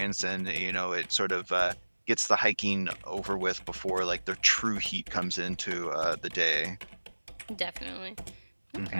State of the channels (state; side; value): inverted; both; correlation -1.00